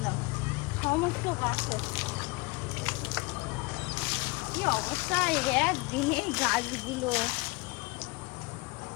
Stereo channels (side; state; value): right; quieter; 25.2 dB